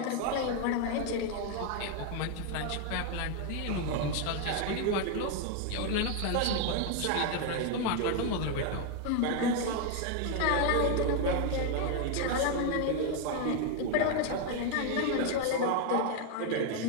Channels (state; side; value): different; both; correlation 0.00